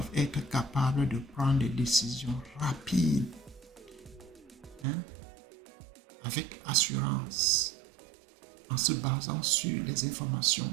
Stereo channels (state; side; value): drops out; left; at 4.9 s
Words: être capables de prendre des décisions rapides, hein, avec assurance, en se basant sur les informations